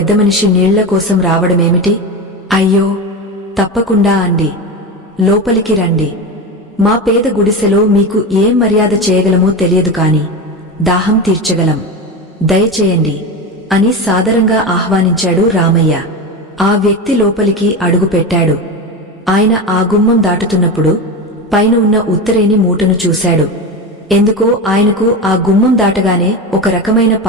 మనిషి నీళ్ల కోసం రావడమేమిటి? అయ్యో, తప్పకుండా అండి, లోపలికి రండి. మా పేద గుడిసెలో మీకు ఏం మర్యాద చేయగలమో తెలియదు కాని దాహం తీర్చగలం, దయచేయండి అని సాదరంగా ఆహ్వానించాడు రామయ్య. ఆ వ్యక్తి లోపలికి అడుగుపెట్టాడు. ఆయన ఆ గుమ్మం దాటుతున్నప్పుడు పైన ఉన్న ఉత్తరేని మూటను చూశాడు. ఎందుకో ఆయనకు ఆ గుమ్మం దాటగానే ఒక రకమైన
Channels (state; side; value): normal; both; correlation 0.21